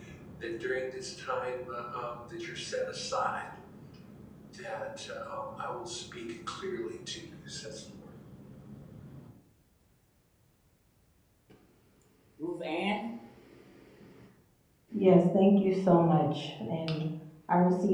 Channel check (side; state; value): both; identical; correlation 1.00